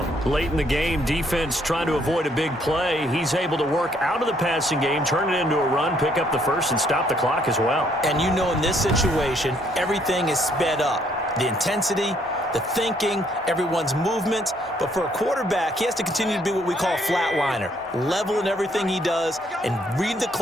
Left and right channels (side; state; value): both; normal; correlation 0.68